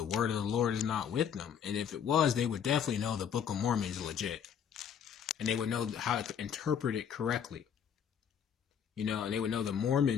word of the Lord is not with them. And if it was, they would definitely know the Book of Mormon is legit. And they would know how to interpret it correctly. You know, and they would know the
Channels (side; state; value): right; quieter; 8.1 dB